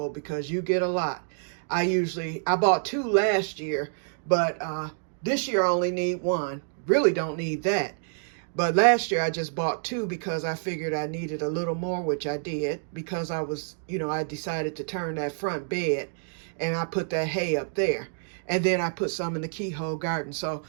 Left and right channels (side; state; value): left; silent; digital silence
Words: because you get a lot. I bought 2 last year, but this year I only need 1. Really don't need that. But last year I just bought 2 because I figured I needed a little more, which I did, because I decided to turn that front bed and I put that hay up there. And then I put some in the keyhole garden. So